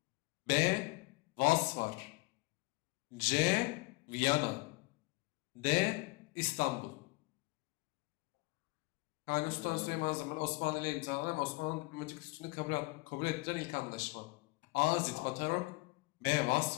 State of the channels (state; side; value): quieter; right; 24.8 dB